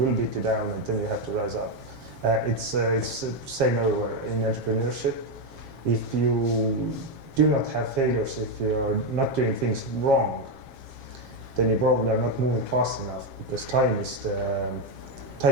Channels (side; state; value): left; late; 7.4 ms